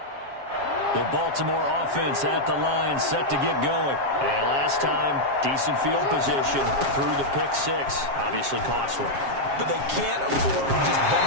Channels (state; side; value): late; left; 7.4 ms